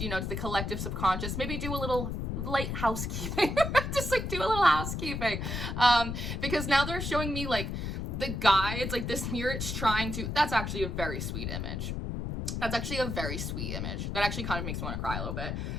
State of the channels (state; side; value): noise; left; rumble, 3 dB below the sound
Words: the collective subconscious, maybe do a little light housekeeping, just like do a little housekeeping. Because now they're showing me like the guides, like this mirror, it's trying to, that's actually a very sweet image. That's actually a very sweet image. That actually kind of makes me want to cry a little bit.